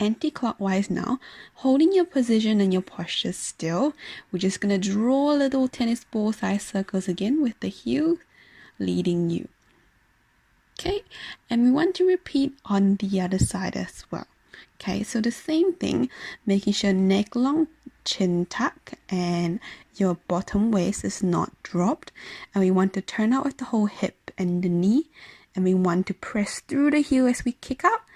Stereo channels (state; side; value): identical; both; correlation 1.00